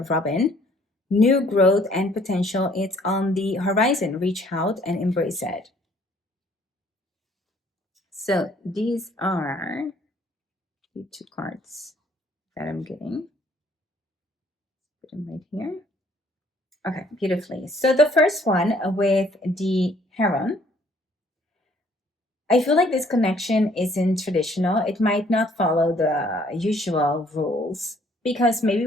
Robin, new growth and potential. It's on the horizon. Reach out and embrace it. So these are the two cards that I'm getting. Put them right here. Okay, beautifully. So the first one with the Heron, I feel like this connection isn't traditional. It might not follow the usual rules because maybe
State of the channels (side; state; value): both; normal; correlation 0.61